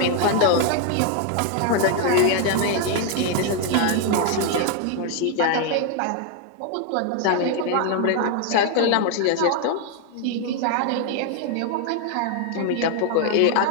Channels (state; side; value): different; both; correlation 0.01